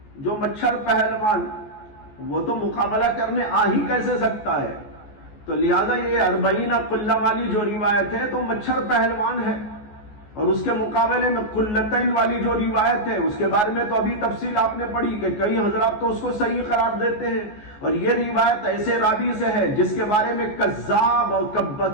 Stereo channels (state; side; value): late; right; 14 ms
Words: جو مچھر پہلوان وہ تو مقابلہ کرنے آ ہی کیسے سکتا ہے. تو لہذا یہ 40 قلہ والی جو روایت ہے تو مچھر پہلوان ہے، اور اس کے مقابلے میں قلتین والی جو روایت ہے اس کے بارے میں تو ابھی تفصیل آپ نے پڑھی کہ کئی حضرات تو اس کو صحیح قرار دیتے ہیں. اور یہ روایت ایسے راوی سے ہے جس کے بارے میں کذاب اور